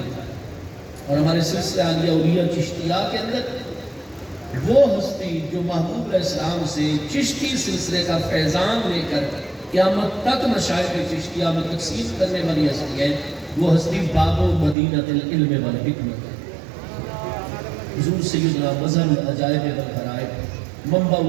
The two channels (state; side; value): drops out; left; at 14.8 s